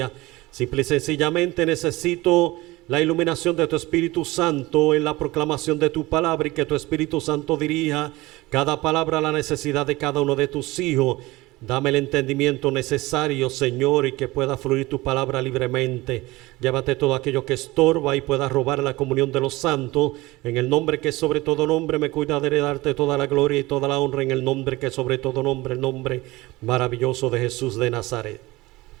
Simple y sencillamente necesito la iluminación de tu Espíritu Santo en la proclamación de tu palabra, y que tu Espíritu Santo dirija cada palabra a la necesidad de cada uno de tus hijos. Dame el entendimiento necesario, Señor, y que pueda fluir tu palabra libremente. Llévate todo aquello que estorba y pueda robar la comunión de los santos. En el nombre que sobre todo nombre, me cuidaré de darte toda la gloria y toda la honra, en el nombre que sobre todo nombre, el nombre maravilloso de Jesús de Nazaret.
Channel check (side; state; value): left; quieter; 20.3 dB